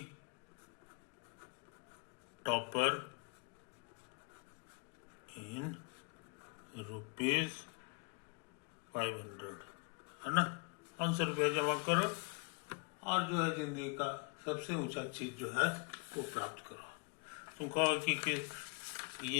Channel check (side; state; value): right; quieter; 35.9 dB